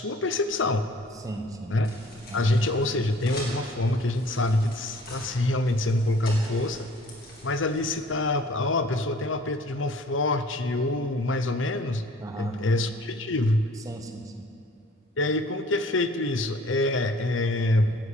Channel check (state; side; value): normal; both; correlation 0.51